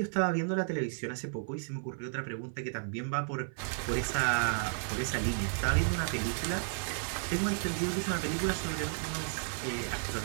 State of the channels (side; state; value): left; silent; 56 dB below the other